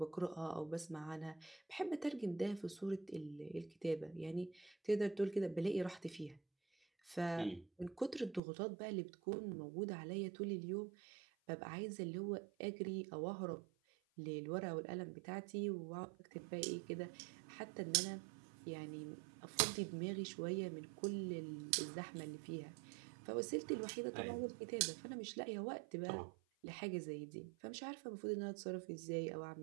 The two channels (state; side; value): drops out; left; at 8.4 s